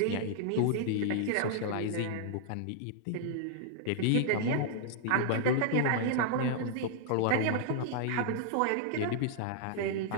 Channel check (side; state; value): both; different; correlation -0.01